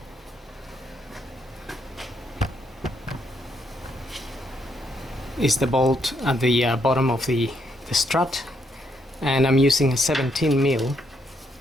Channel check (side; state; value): both; normal; correlation 0.75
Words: the bolt at the bottom of the strut, and I'm using a 17 mil.